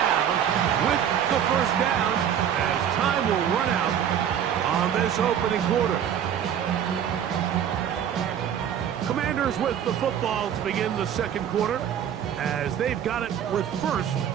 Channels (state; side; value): quieter; left; 9.2 dB